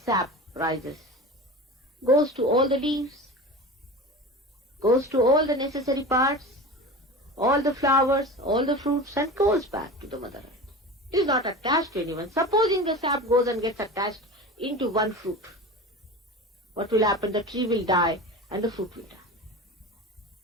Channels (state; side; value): normal; both; correlation 0.32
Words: sap rises, goes to all the leaves, goes to all the necessary parts, all the flowers, all the fruits, and goes back to the mother earth. It is not attached to anyone. Supposing the sap goes and gets attached into one fruit, what will happen? The tree will die and the fruit will die.